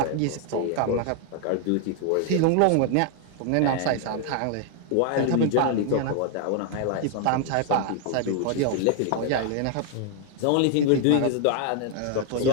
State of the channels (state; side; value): different; both; correlation 0.00